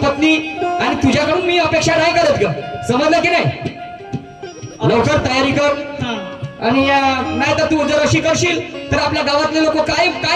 आणि तुझ्याकडून मी अपेक्षा नाही करत ग, समजलं की नाही? लवकर तयारी कर. आणि नाही तर तू जर अशी करशील तर आपल्या गावातले लोक काय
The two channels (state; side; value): identical; both; correlation 1.00